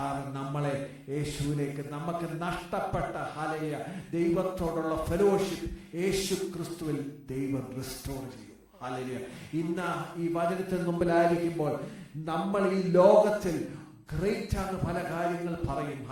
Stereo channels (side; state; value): both; identical; correlation 1.00